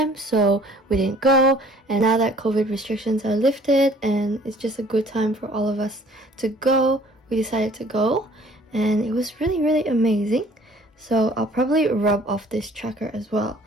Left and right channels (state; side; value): normal; both; correlation 0.54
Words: so we didn't go. And now that COVID restrictions are lifted and it's just a good time for all of us to go, we decided to go, and it was really amazing. So I'll probably rub off this tracker as well.